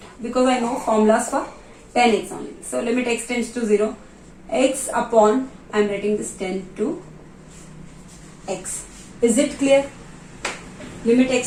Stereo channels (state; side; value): identical; both; correlation 1.00